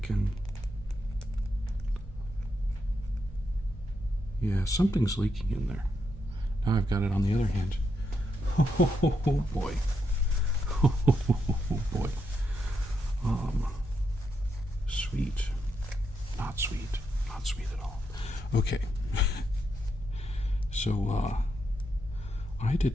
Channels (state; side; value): normal; both; correlation 0.82